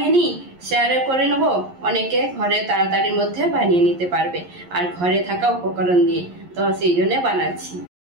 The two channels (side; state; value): left; late; 11 ms